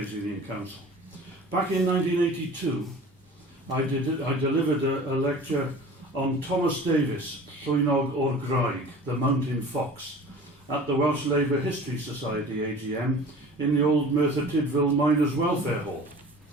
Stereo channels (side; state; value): both; normal; correlation 0.42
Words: Union Council. Back in 1982, I delivered a lecture on Thomas Davies, Llwynog o'r Graig, the Mountain Fox, at the Welsh Labour History Society AGM in the old Merthyr Tydfil Miners' Welfare Hall.